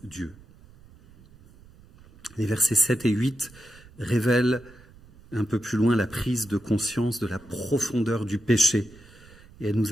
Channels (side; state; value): right; noise; rumble, 24 dB below the sound